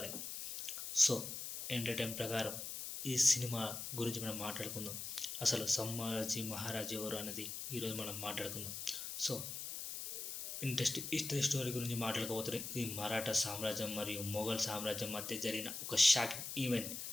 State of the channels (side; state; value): left; noise; hiss, 6 dB below the sound